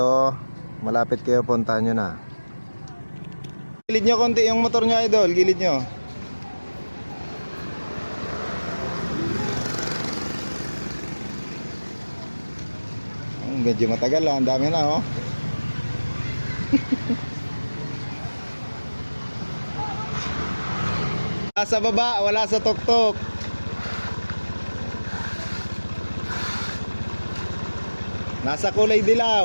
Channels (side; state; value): both; inverted; correlation -1.00